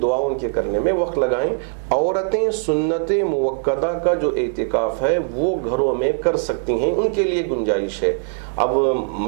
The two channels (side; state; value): left; silent; digital silence